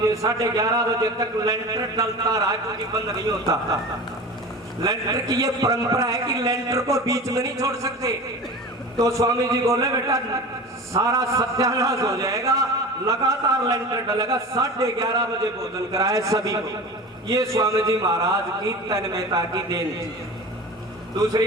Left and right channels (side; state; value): both; normal; correlation 0.34